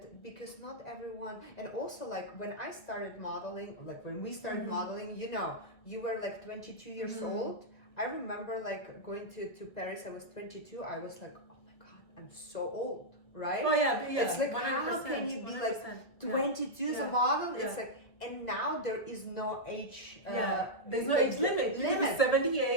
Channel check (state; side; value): late; right; 1.7 ms